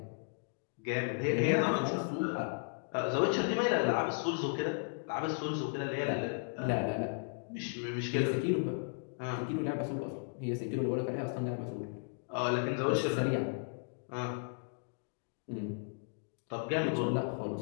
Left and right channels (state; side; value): silent; right; digital silence